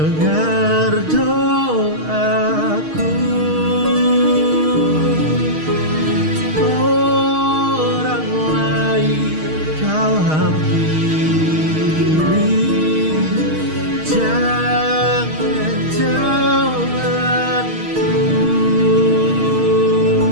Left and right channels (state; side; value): late; left; 6.4 ms